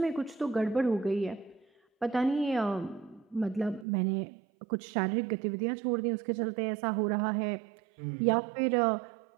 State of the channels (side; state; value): left; drops out; at 3.9 s